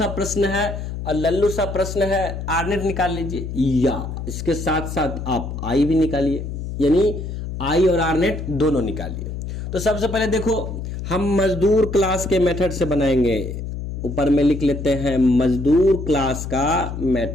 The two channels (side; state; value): left; noise; hum, 6 dB below the sound